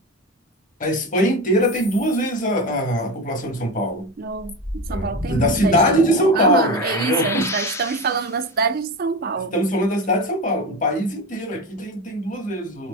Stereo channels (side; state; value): both; normal; correlation 0.23